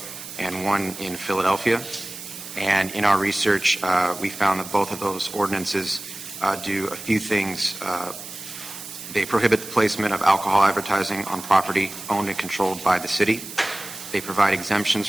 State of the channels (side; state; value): right; noise; hiss, 12 dB below the sound